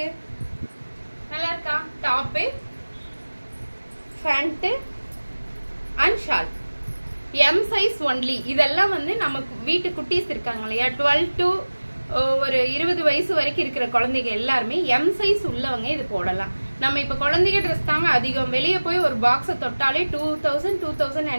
நல்லா இருக்கா? Top, pant and shawl M size only. இதெல்லாம் வந்து நமக்கு வீட்டு குட்டீஸ் இருக்காங்க இல்லையா, 12 to ஒரு 20 வயசு வரைக்கும் இருக்கிற குழந்தைங்க எல்லாருமே எம் சைஸ் உள்ளவங்க இது போடலாம். நம்ம இப்ப குழந்தைங்க ட்ரெஸ் தாங்க அதிகம். வெளியே போய் ஒரு பாக்ஸை தொட்டாலே 2000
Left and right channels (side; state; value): both; inverted; correlation -1.00